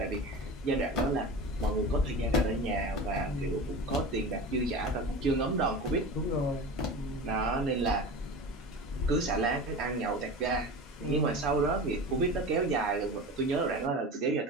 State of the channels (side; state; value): both; normal; correlation 0.31